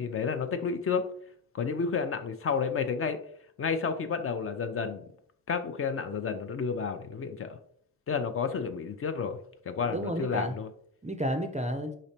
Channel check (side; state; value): right; quieter; 4.4 dB